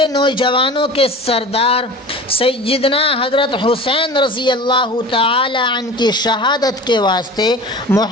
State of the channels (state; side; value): normal; both; correlation 0.37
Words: نوجوانوں کے سردار سیدنا حضرت حسین رضی اللہ تعالی عنہ کی شہادت کے واسطے